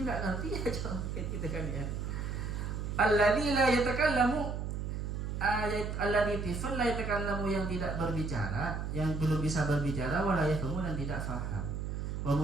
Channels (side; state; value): right; noise; hum, 4 dB below the sound